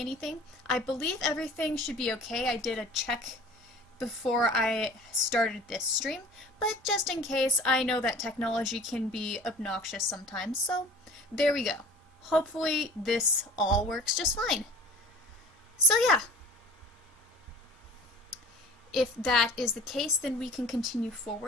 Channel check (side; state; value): both; normal; correlation 0.43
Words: I believe everything should be okay. I did a check before I started this stream, but just in case, I know that technology can be obnoxious sometimes, so there we go. Hopefully this all works just fine. So yeah, if that is the case, then we can continue